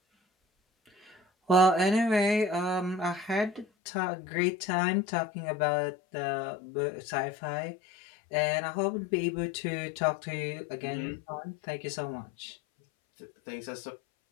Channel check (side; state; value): right; drops out; at 3.7 s